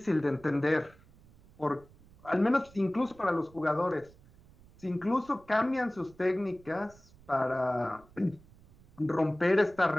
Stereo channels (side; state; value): right; noise; rumble, 26 dB below the sound